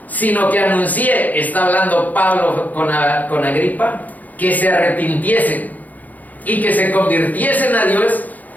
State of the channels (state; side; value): late; right; 0.080 ms